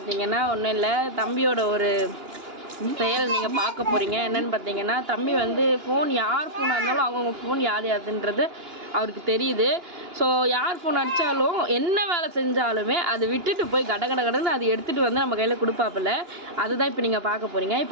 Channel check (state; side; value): late; left; 2.9 ms